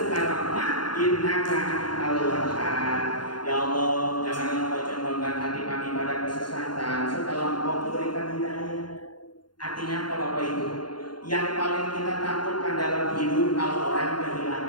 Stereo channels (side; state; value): right; late; 0.71 ms